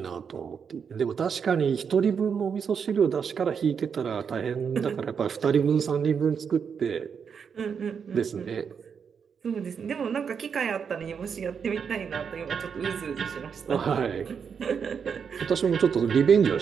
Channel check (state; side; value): quieter; left; 6.7 dB